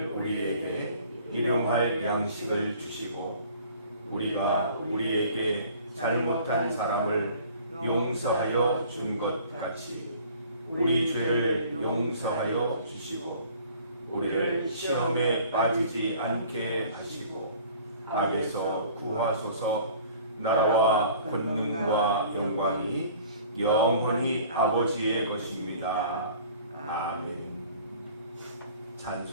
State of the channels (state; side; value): inverted; both; correlation -0.51